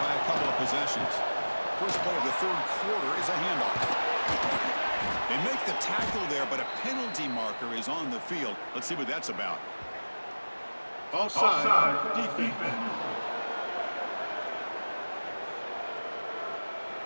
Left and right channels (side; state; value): both; inverted; correlation -1.00